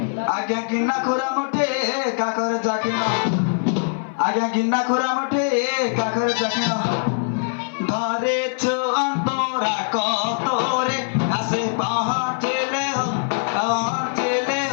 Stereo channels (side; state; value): right; silent; 57 dB below the other